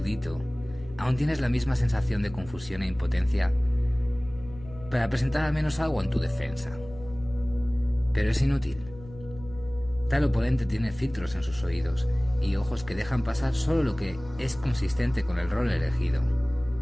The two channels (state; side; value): noise; left; hum, 18 dB below the sound